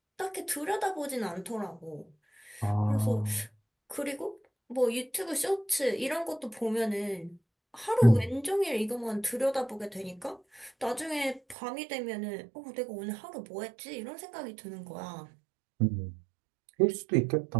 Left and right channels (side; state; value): left; drops out; at 11.6 s